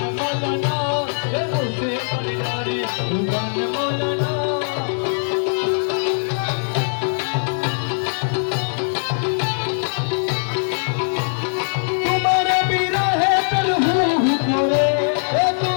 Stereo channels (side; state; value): right; silent; digital silence